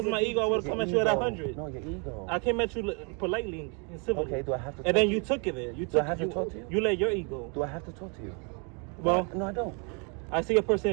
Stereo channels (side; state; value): left; quieter; 35.6 dB